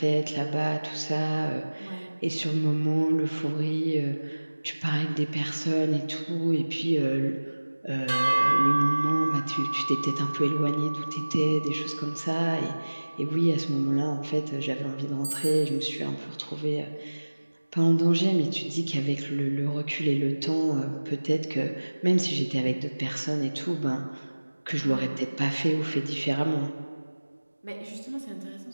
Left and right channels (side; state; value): both; inverted; correlation -1.00